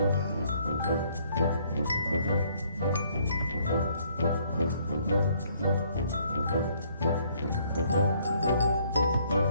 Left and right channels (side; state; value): both; inverted; correlation -0.65